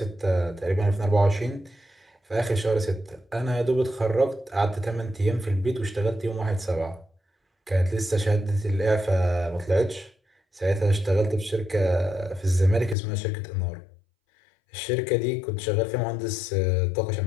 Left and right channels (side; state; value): right; drops out; at 13.0 s